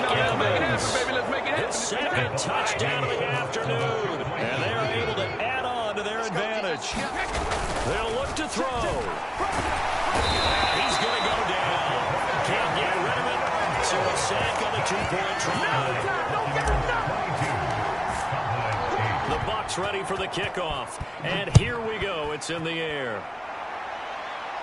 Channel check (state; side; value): identical; both; correlation 1.00